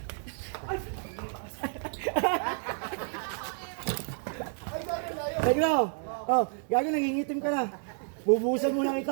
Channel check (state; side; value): silent; left; 58 dB below the other